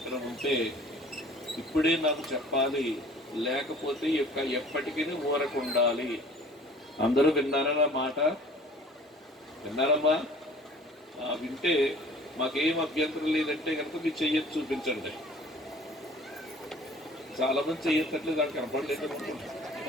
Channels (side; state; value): both; normal; correlation 0.49